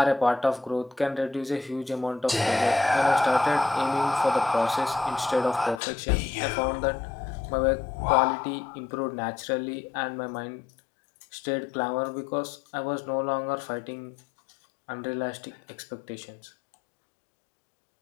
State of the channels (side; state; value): right; drops out; at 5.8 s